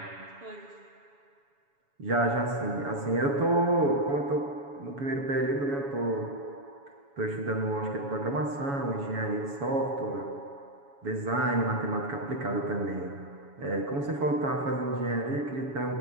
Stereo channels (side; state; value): left; late; 7.1 ms